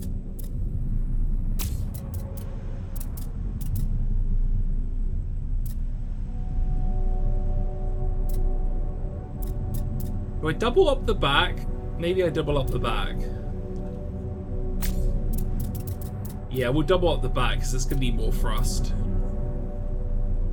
Do I double up the back? Maybe I double up the back. Yeah, we'll double up the back because it's going to be more thrust.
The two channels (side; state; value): both; identical; correlation 1.00